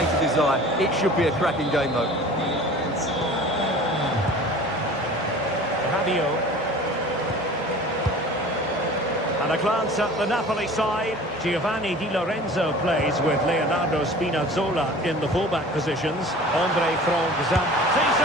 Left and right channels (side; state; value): both; normal; correlation 0.43